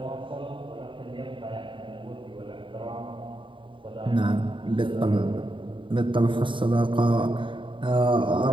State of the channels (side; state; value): left; late; 0.24 ms